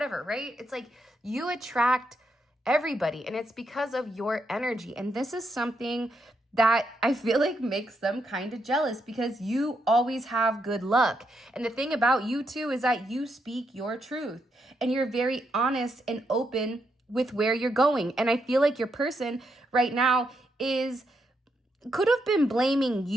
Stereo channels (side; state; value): both; normal; correlation 0.80